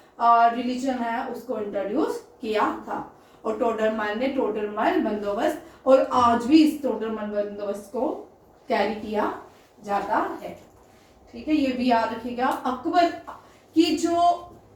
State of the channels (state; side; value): identical; both; correlation 1.00